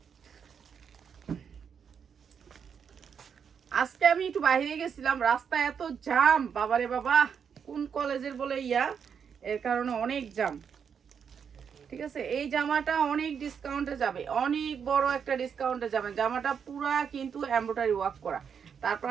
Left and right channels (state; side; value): quieter; left; 7.1 dB